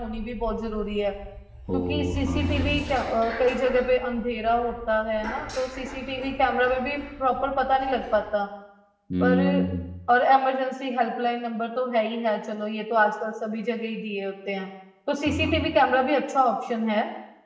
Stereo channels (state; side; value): identical; both; correlation 1.00